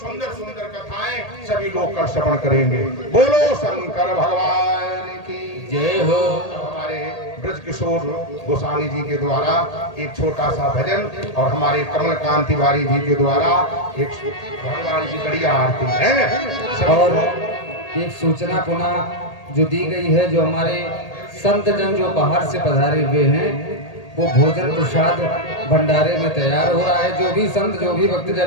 सुंदर कथाएं सभी लोग कल श्रवण करेंगे। बोलो शंकर भगवान की जय हो। हमारे ब्रज किशोर गोस्वामी जी के द्वारा एक छोटा सा भजन और हमारे कमलकांत तिवारी जी के द्वारा एक भगवान की बढ़िया आरती है। और एक सूचना पुनः जो दी गई है, जो हमारे संत जन जो बाहर से पधारे हुए हैं, वो भोजन प्रसाद भंडारे में तैयार हो रहा है। जो भी संत, जो भी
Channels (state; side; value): late; right; 1.8 ms